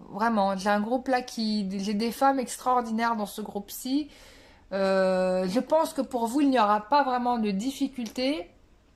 Vraiment, j'ai un groupe là j'ai des femmes extraordinaires dans ce groupe-ci. Je pense que pour vous il n'y aura pas vraiment de difficulté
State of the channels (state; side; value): identical; both; correlation 1.00